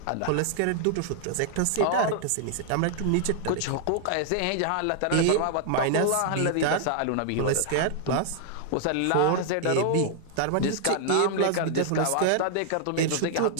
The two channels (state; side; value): different; both; correlation 0.00